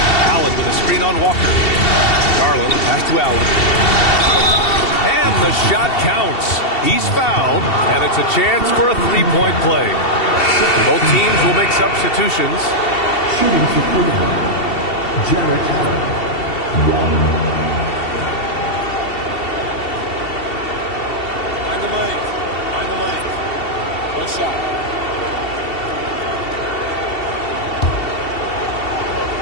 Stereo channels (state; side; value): late; right; 2.7 ms